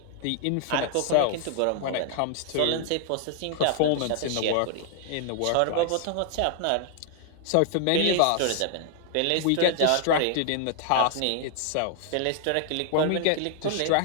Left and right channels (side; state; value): both; different; correlation 0.00